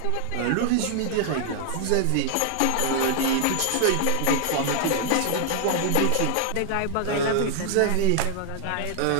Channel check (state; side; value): different; both; correlation 0.00